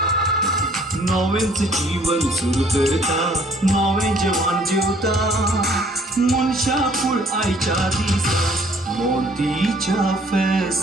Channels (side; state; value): both; normal; correlation 0.59